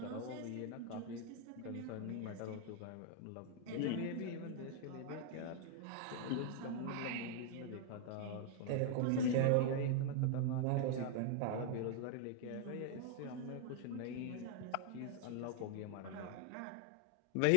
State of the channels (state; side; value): different; both; correlation 0.00